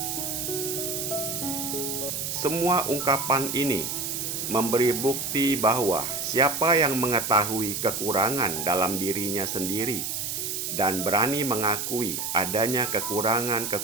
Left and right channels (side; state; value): right; noise; hiss, 3 dB below the sound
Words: Semua ungkapan ini memberi bukti bahwa siapa yang mengetahui kekurangan dalam dirinya sendiri dan berani mengakui adanya